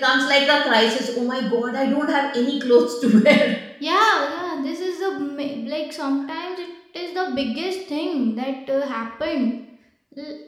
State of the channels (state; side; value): identical; both; correlation 1.00